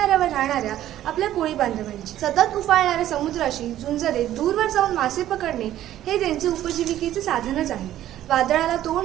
राहणाऱ्या आपल्या कोळी बांधवांची. सतत उफाळणाऱ्या समुद्राशी झुंज देत दूरवर जाऊन मासे पकडणे हे त्यांचे उपजीविकेचे साधनच आहे. वादळाला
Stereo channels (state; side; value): quieter; left; 12.8 dB